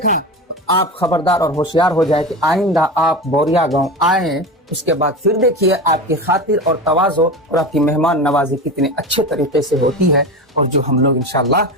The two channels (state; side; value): normal; both; correlation 0.26